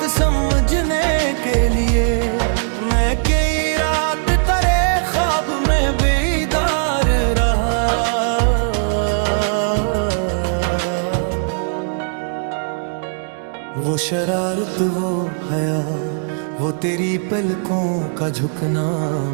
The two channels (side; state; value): left; silent; 64 dB below the other